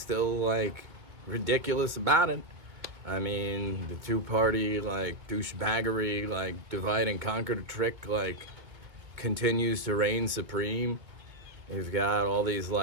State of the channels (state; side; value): late; left; 2.3 ms